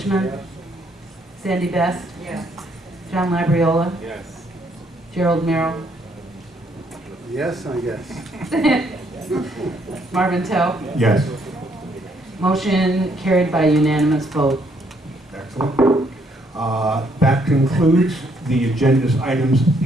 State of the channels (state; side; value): normal; both; correlation 0.70